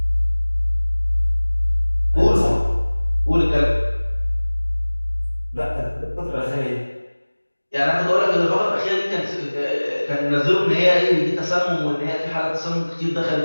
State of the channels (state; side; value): inverted; both; correlation -1.00